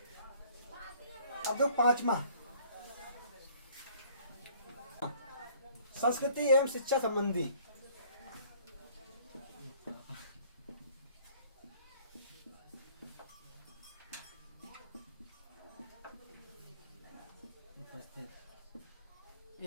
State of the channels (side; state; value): both; inverted; correlation -0.56